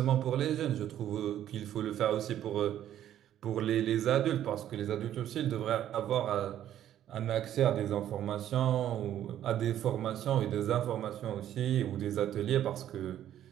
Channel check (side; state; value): left; quieter; 11.4 dB